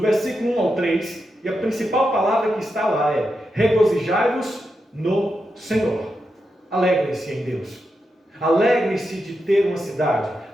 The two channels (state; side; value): normal; both; correlation 0.87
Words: versículo 1 ao 3, e a principal palavra que está lá é: regozijai-vos no Senhor. Alegrem-se em Deus. Alegrem-se de ter uma cidade.